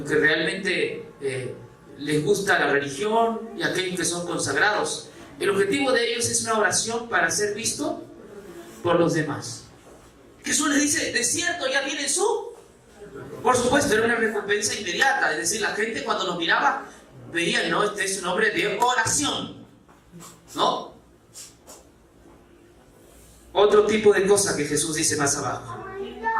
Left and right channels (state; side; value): identical; both; correlation 1.00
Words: que realmente les gusta la religión y aquellos que son consagrados. El objetivo de ellos es una oración para ser visto por los demás. Jesús les dice, de cierto ya tienen su... Por supuesto, era una recompensa inmediata. Es decir, la gente cuando los miraba veían, ¿no? Este es un hombre de oración. ¿no? Otro tipo de cosa que Jesús dice más abajo.